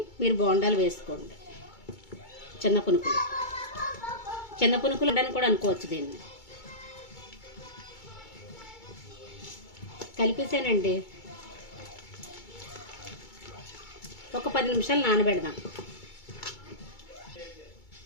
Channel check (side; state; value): right; late; 2.3 ms